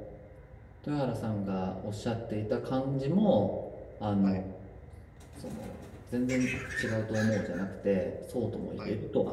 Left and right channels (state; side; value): identical; both; correlation 1.00